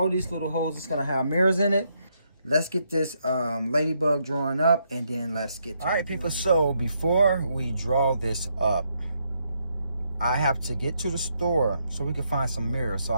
these little holes is gonna have mirrors in it. Let's get this ladybug drawn up and then let's get to it. All right, people, so before we draw this up, I have to get to the store so we can find some mirrors so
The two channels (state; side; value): inverted; both; correlation -0.77